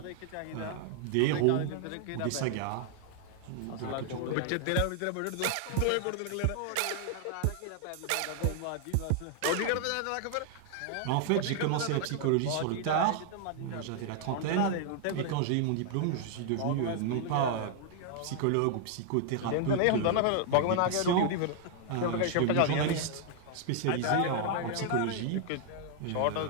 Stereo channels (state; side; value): different; both; correlation 0.00